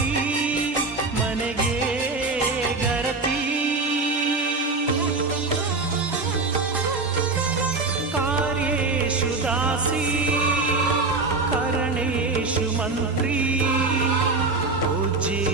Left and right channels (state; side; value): quieter; left; 3.7 dB